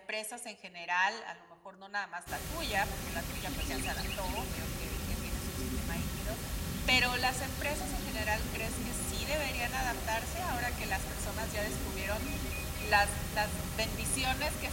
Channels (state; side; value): identical; both; correlation 1.00